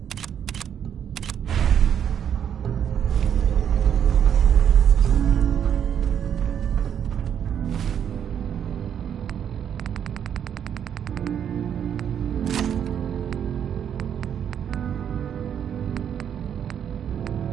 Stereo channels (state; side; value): quieter; left; 8.8 dB